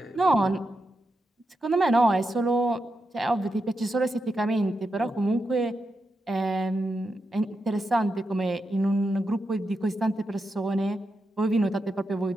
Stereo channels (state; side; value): normal; both; correlation 0.87